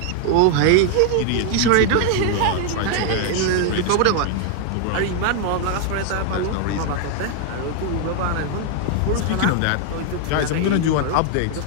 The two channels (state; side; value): different; both; correlation 0.00